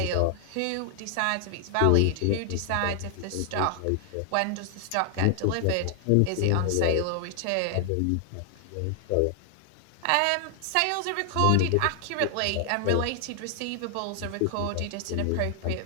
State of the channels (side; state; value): both; different; correlation 0.00